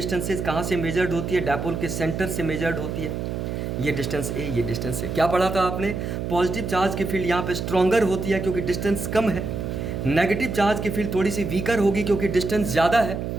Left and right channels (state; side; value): noise; right; hum, 4 dB below the sound